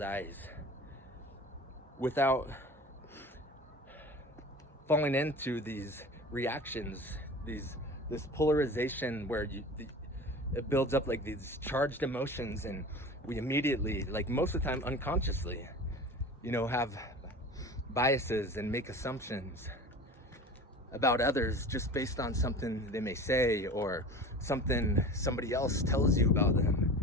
without falling into these reactions, this polarization where it builds up like these charged emotions, and we immediately, like most of the time unconsciously, have biases and make assumptions about others just based on something they may say, or something somebody else tells you about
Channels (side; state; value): both; normal; correlation 0.36